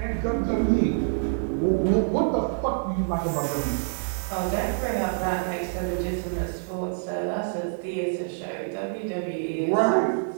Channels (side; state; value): left; silent; digital silence